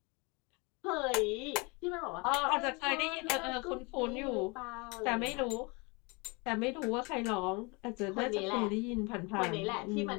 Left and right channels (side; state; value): right; quieter; 28.8 dB